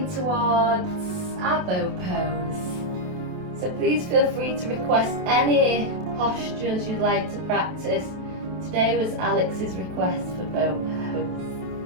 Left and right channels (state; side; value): late; left; 27 ms